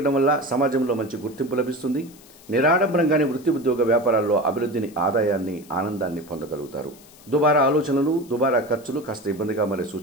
వల్ల సమాజంలో మంచి గుర్తింపు లభిస్తుంది. నిరాడంబరంగానే వృత్తి ఉద్యోగ వ్యాపారాల్లో అభివృద్ధిని, ఆదాయాన్ని, ఆనందాన్ని పొందగలుగుతారు. దుబారా ఆలోచనలు, దుబారా ఖర్చులు కాస్త ఇబ్బందిగా మారే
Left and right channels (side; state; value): left; noise; hiss, 24 dB below the sound